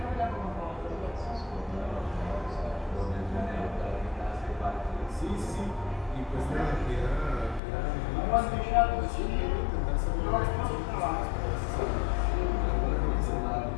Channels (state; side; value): drops out; right; at 7.6 s